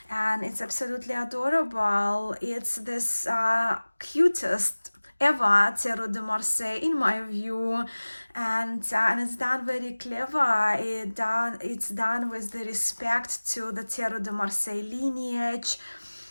and it's absolutely adorable. It's this cutest ever tarot de Marseille in my view, and it's done very clever. It's done with the respect to the tarot de Marseille lineage,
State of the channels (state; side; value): inverted; both; correlation -1.00